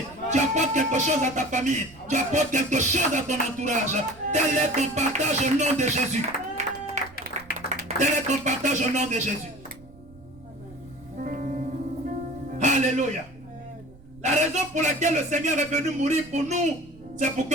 Tu apportes quelque chose à ta famille. Tu apportes quelque chose à ton entourage. Tel est ton partage au nom de Jésus. Tel est ton partage au nom de Jésus. Alléluia. La raison pour laquelle le Seigneur est venu mourir pour nous, c'est pour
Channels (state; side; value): noise; right; rumble, 23 dB below the sound